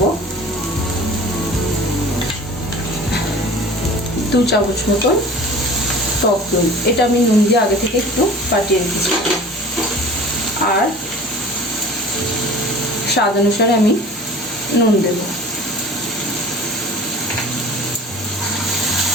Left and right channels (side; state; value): both; normal; correlation 0.42